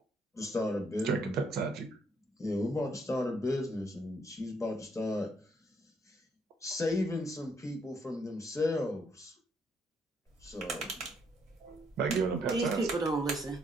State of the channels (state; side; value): normal; both; correlation 0.72